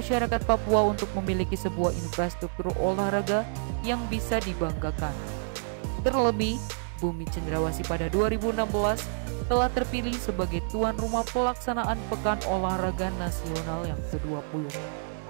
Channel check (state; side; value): silent; left; 56 dB below the other